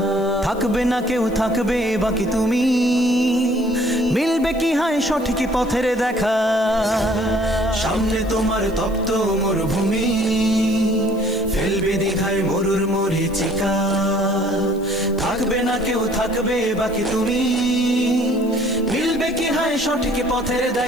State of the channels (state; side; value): noise; left; hiss, 24 dB below the sound